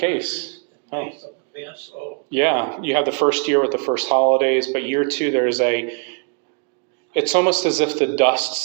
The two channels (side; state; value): left; quieter; 36.9 dB